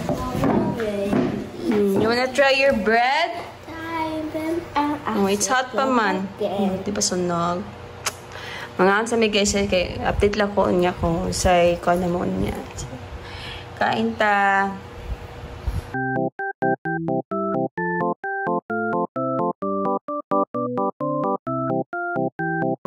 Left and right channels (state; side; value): identical; both; correlation 1.00